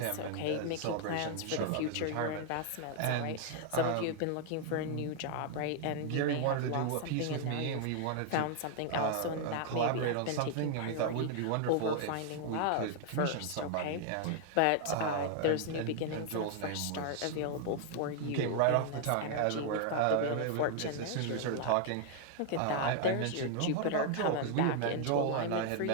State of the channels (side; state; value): both; different; correlation 0.00